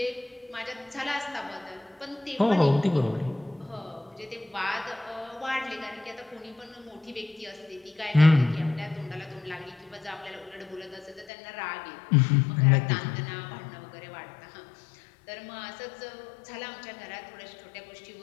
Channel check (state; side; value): drops out; right; at 11.3 s